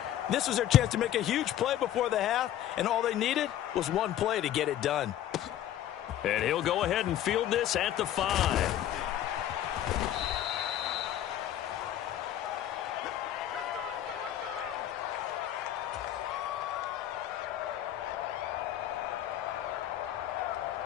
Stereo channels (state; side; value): quieter; right; 11.9 dB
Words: This was their chance to make a huge play before the half, and all they needed was one play to get it done. And he'll go ahead and field this at the 5.